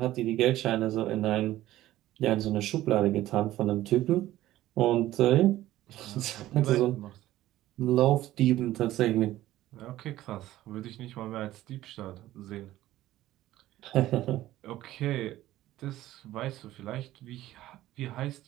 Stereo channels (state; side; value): quieter; left; 15.0 dB